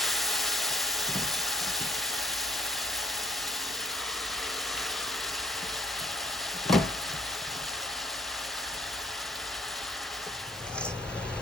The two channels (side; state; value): both; normal; correlation 0.64